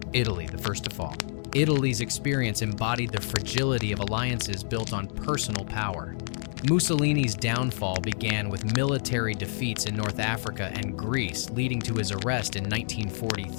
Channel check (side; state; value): right; silent; digital silence